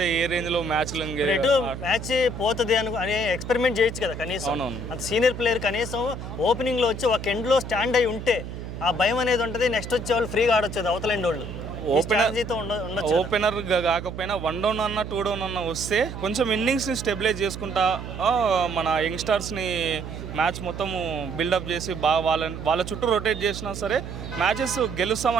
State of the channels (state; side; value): noise; right; hum, 9 dB below the sound